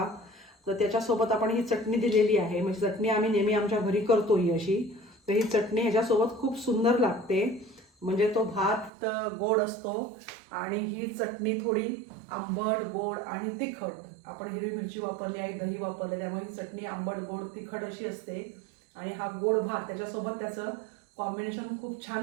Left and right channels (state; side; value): drops out; left; at 8.9 s